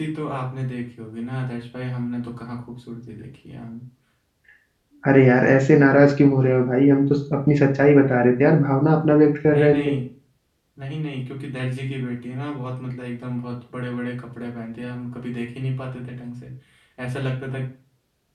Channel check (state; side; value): identical; both; correlation 1.00